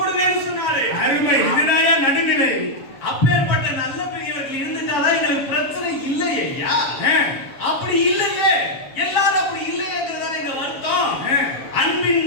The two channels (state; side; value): late; right; 7.4 ms